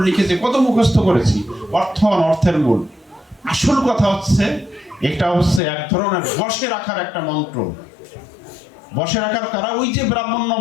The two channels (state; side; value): drops out; right; at 5.6 s